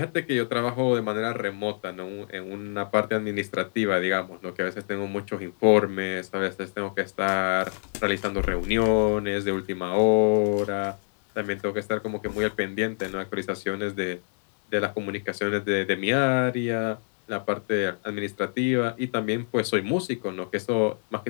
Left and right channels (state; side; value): silent; right; digital silence